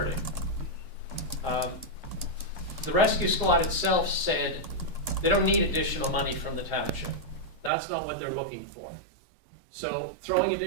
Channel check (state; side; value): drops out; left; at 7.7 s